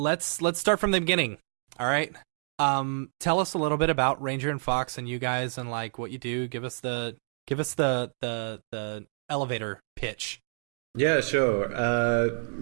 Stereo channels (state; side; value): silent; left; digital silence